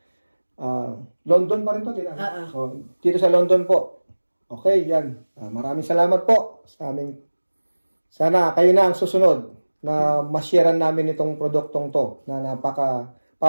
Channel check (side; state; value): both; inverted; correlation -1.00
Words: London pa rin to, tita. So, dito sa London po. Okay, yan. Maraming salamat po sa aming... Sana kayo na ang susunod na ma-sharean namin itong produktong to na